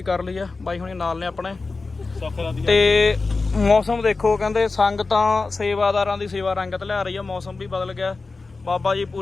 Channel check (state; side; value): quieter; right; 3.8 dB